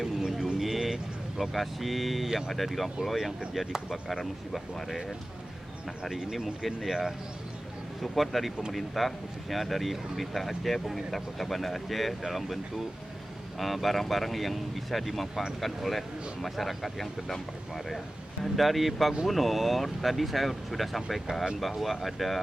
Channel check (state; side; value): normal; both; correlation 0.96